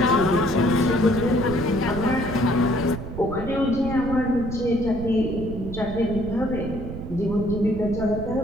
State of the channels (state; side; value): noise; right; rumble, 9 dB below the sound